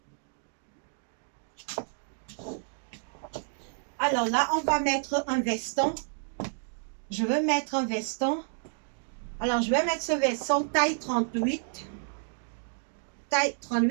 Alors là, on va mettre un veston. Je veux mettre un veston. Alors, je vais mettre ce veston taille 38. Taille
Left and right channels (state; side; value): silent; left; 58 dB below the other